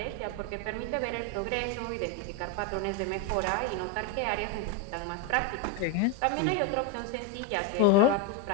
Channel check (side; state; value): both; different; correlation 0.02